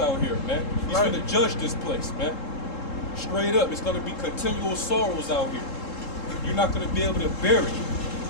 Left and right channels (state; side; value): late; right; 3.7 ms